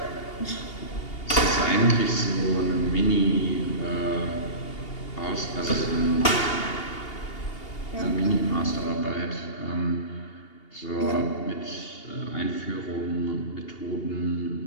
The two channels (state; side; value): late; right; 2.8 ms